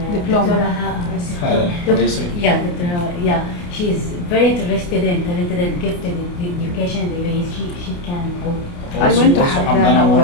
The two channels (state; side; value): late; right; 29 ms